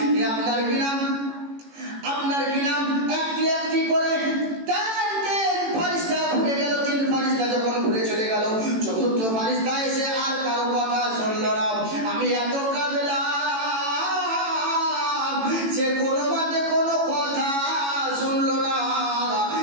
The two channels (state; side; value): late; left; 18 ms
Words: আপনার কিনা একটি একটি করে 3 ফেরেশতা ঘুরে গেল। 3 ফেরেশতা যখন ঘুরে চলে গেল, 4র্থ ফেরেশতা এসে আর কারো কথা শুনল না। আমি এত কাঁদলাম, সে কোনো মতে কোনো কথা শুনল না।